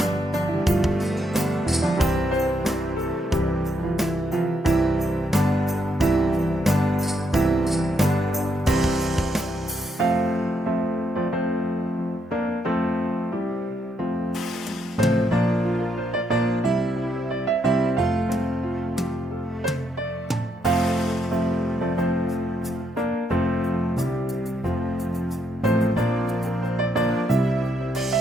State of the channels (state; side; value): normal; both; correlation 0.77